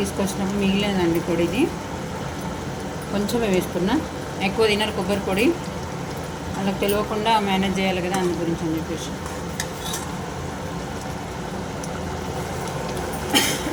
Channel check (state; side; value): identical; both; correlation 1.00